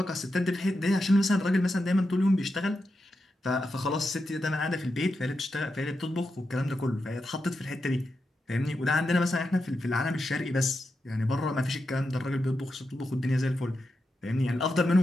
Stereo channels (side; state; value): both; normal; correlation 0.87